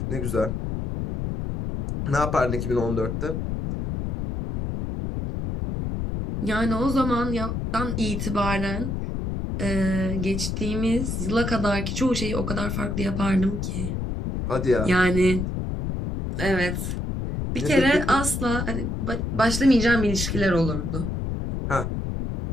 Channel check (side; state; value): left; noise; rumble, 3 dB below the sound